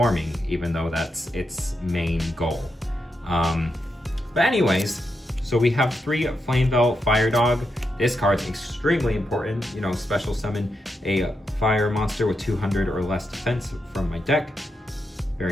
even though that's its main goal. But anyways, so we have 3 Flamebell Fire Dog. This card's extremely important. You know, special summon a fire monster with 200 or less defense from my deck.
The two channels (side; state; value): both; normal; correlation 0.84